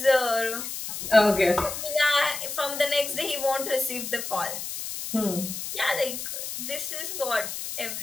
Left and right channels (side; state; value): left; noise; hiss, 6 dB below the sound